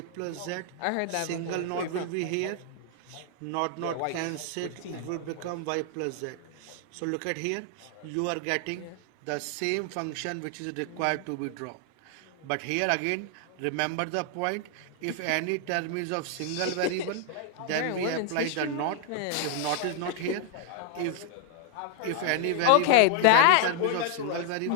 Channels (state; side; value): different; both; correlation 0.00